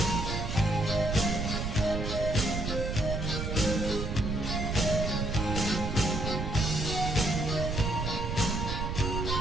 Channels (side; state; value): right; noise; rumble, 2 dB below the sound